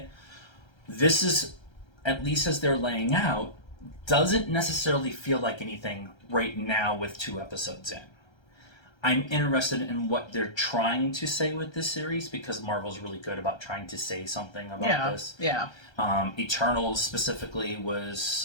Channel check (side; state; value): right; late; 1.3 ms